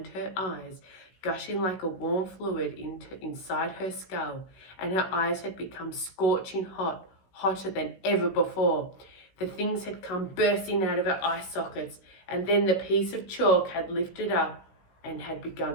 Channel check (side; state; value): right; late; 16 ms